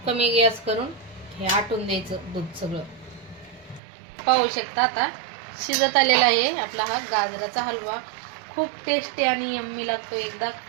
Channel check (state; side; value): drops out; left; at 3.8 s